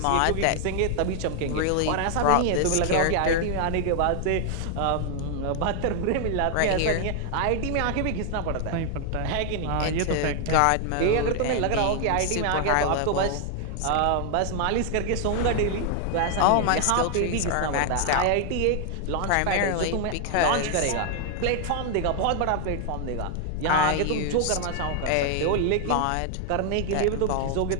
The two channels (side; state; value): both; different; correlation 0.00